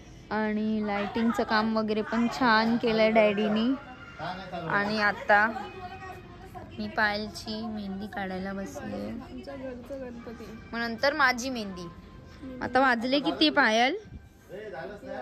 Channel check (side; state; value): both; identical; correlation 1.00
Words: आणि लाइटिंगचं काम वगैरे पण छान केलंय डॅडीनी. आणि आता मी पायलची मेहंदी काढायला बसले. मग नंतर माझी मेहंदी. आता वाजले किती पायल?